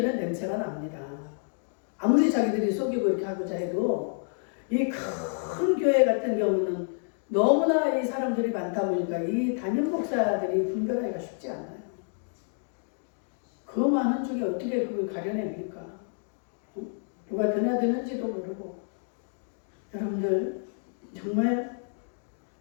냄새가 납니다. 아무리 자기들이 속이고 이렇게 하고자 해도 이 큰 교회 같은 경우는 너무나 이 사람들이 많다 보니까 이 담임 목사들이 분별하기가 쉽지 않아요. 그 많은 중에 어떻게 그걸 가려냅니까? 누가 드나드는지도 모르고. 여러분들 정말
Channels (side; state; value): right; silent; 59 dB below the other